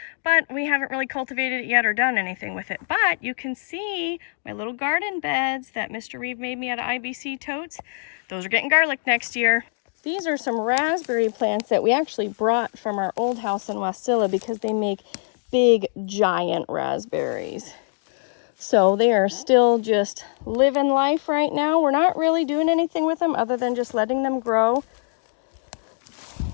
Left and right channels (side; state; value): right; silent; 63 dB below the other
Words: but we haven't really cultivated it yet or done anything with it. But you can see my little garden beds that Mr. Reeve made me out of IBC totes. Those are getting garlic next year. These are some raspberry plants that we actually brought from our old house in Wasilla because they make big, giant raspberries. So they are still just living life right now. We're not really doing anything with them other than just letting them grow.